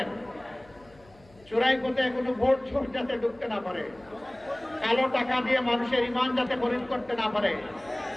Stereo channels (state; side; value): noise; left; hum, 27 dB below the sound